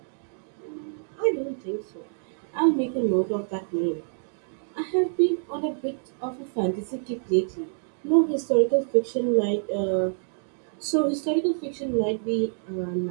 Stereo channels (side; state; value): left; silent; digital silence